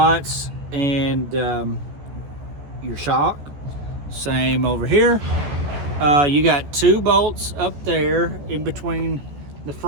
and your shock. Same over here. You got 2 bolts up there in between the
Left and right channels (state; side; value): late; left; 14 ms